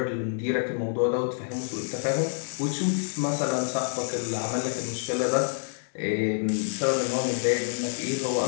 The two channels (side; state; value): right; silent; digital silence